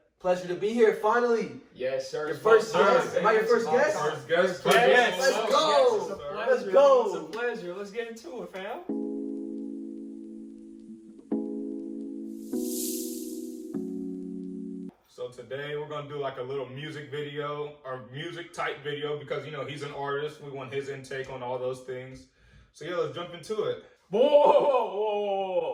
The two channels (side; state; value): both; identical; correlation 1.00